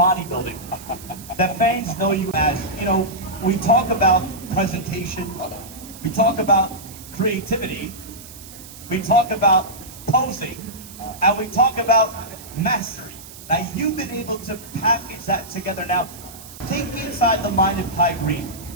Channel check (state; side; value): noise; right; hiss, 17 dB below the sound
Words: that fans know you as. You know, we talk about presentation, we talk about creativity, we talk about posing, and we talk about mastery. Now, you've been able to package that together. Now, take me inside the mind of Kai Green.